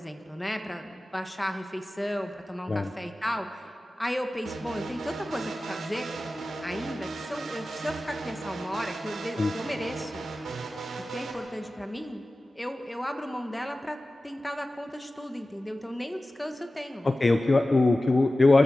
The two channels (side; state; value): both; normal; correlation 0.95